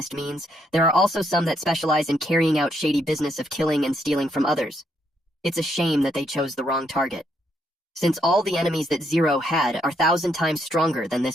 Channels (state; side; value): normal; both; correlation 0.75